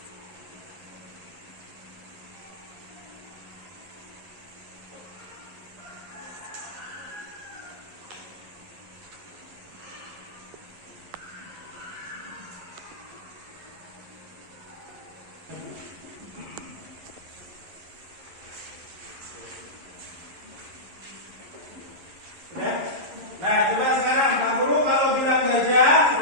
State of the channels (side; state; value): left; late; 11 ms